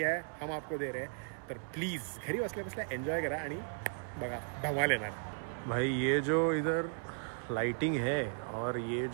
है, हम आपको दे रहे हैं. तर प्लीज़ घरी बसल्या बसल्या एन्जॉय करा आणि बघा धमाल येणार. भाई ये जो इधर लाइटिंग है और ये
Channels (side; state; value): left; silent; 54 dB below the other